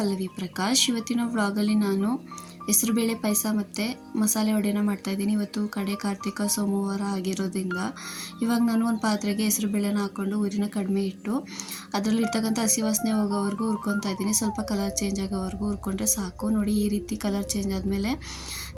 ಪ್ರಕಾಶ್. ಇವತ್ತಿನ ವ್ಲಾಗಲ್ಲಿ ನಾನು ಹೆಸರುಬೇಳೆ ಪಾಯಸ ಮತ್ತು ಮಸಾಲೆ ವಡೆನ ಮಾಡ್ತಾಯಿದ್ದೀನಿ. ಇವತ್ತು ಕಡೆ ಕಾರ್ತಿಕ ಸೋಮವಾರ ಆಗಿರೋದ್ರಿಂದ ಇವಾಗ ನಾನು ಒಂದು ಪಾತ್ರೆಗೆ ಹೆಸರುಬೇಳೆನ ಹಾಕ್ಕೊಂಡು ಊರಿನ ಕಡಿಮೆ ಇಟ್ಟು ಅದರಲ್ಲಿರ್ತಕ್ಕಂಥ ಹಸಿ ವಾಸನೆ ಹೋಗೋವರೆಗೂ ಹುರ್ಕೊತಾ ಇದ್ದೀನಿ. ಸ್ವಲ್ಪ ಕಲರ್ ಚೇಂಜ್ ಆಗೋವರೆಗೂ ಹುರ್ಕೊಂಡ್ರೆ ಸಾಕು. ನೋಡಿ, ಈ ರೀತಿ ಕಲರ್ ಚೇಂಜ್ ಆದಮೇಲೆ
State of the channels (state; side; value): identical; both; correlation 1.00